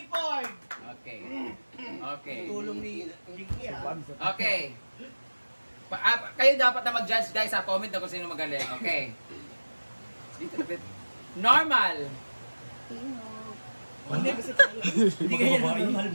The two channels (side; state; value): both; inverted; correlation -1.00